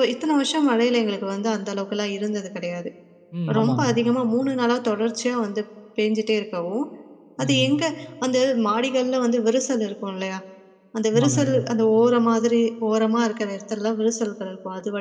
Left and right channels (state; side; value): identical; both; correlation 1.00